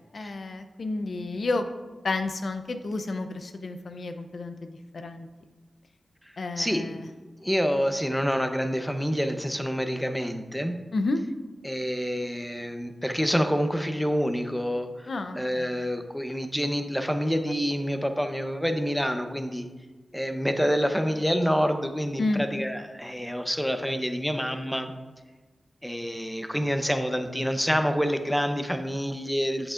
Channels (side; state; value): both; normal; correlation 0.97